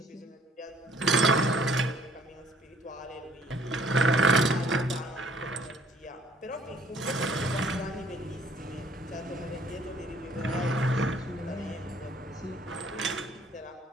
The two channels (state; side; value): normal; both; correlation 0.59